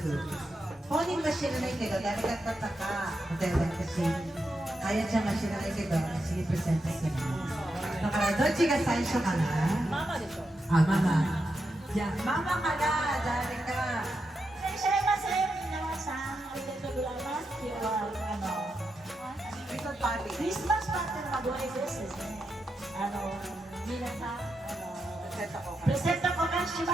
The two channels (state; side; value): normal; both; correlation 0.86